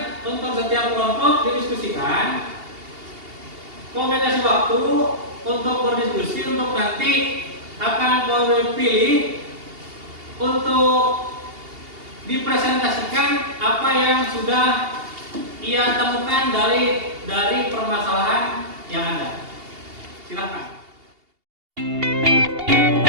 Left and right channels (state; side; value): late; left; 2.8 ms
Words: untuk setiap kelompok didiskusikan. Kau kasih waktu untuk berdiskusi, untuk nanti akan kau pilih untuk dipresentasikan apa yang sudah ia temukan dari permasalahan yang ada. Silakan.